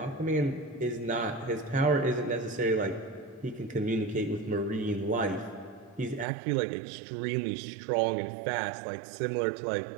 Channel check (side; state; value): left; drops out; at 6.2 s